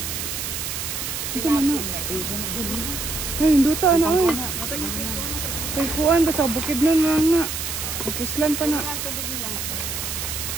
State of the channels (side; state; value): right; noise; hiss, 4 dB below the sound